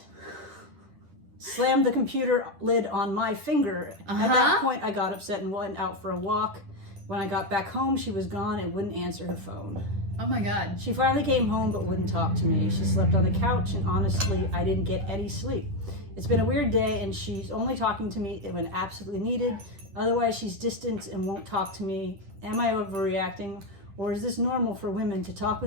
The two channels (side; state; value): left; late; 10 ms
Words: Slammed the computer lid on my finger. At that point, I got upset and went out for a walk. When I got back home, she was gone and wouldn't answer her phone. Oh my God. She finally came home but wouldn't talk to me. She slept on the couch and honestly, I didn't get any sleep. It's been a weird day and she's only talking to me when absolutely needed. Otherwise, she's distant and won't talk to me. Am I overreacting? Or is this normal for women to talk